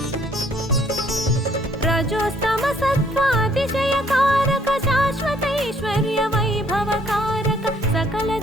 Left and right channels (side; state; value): both; normal; correlation 0.64